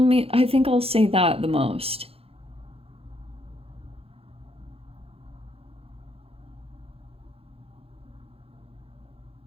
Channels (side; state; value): left; late; 0.28 ms